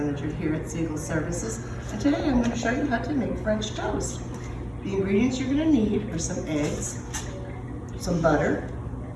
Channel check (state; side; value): identical; both; correlation 1.00